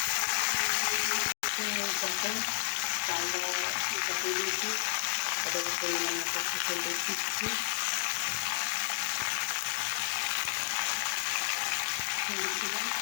চালদা দিয়ে দিয়েছি। এটাকে পরিমাণ মতো ফুটে দিচ্ছি।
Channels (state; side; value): silent; right; digital silence